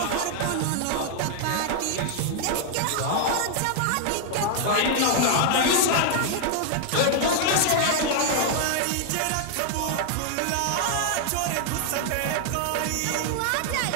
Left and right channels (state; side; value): different; both; correlation 0.00